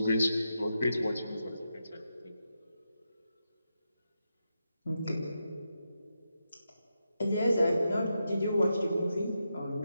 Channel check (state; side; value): inverted; both; correlation -0.86